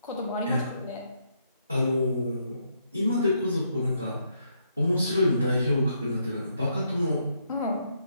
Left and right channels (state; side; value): inverted; both; correlation -0.76